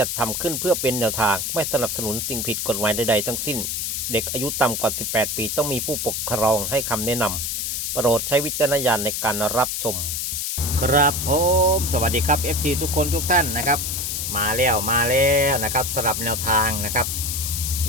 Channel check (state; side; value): noise; left; hiss, 2 dB below the sound